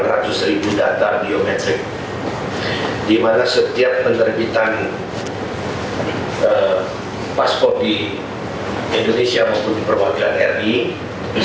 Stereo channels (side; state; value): both; identical; correlation 1.00